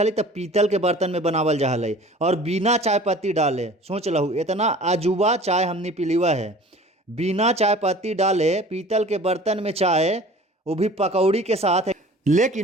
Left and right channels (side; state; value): both; normal; correlation 0.45